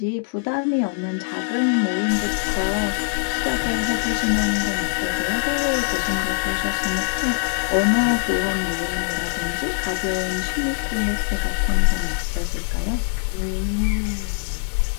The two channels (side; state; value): right; silent; 64 dB below the other